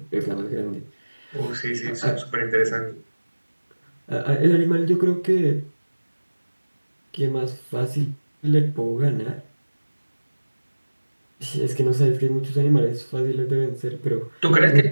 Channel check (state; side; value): inverted; both; correlation -1.00